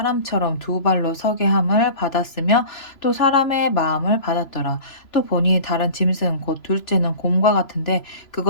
두 발로 서게 함을 받았으며 또 사람의 마음을 받았더라. 또 보니 다른 짐승 곧 둘째는 곰과 같은데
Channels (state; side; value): late; right; 3.0 ms